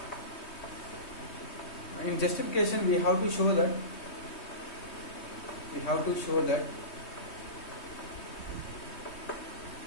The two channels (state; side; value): late; right; 3.2 ms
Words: In justification, we have to show that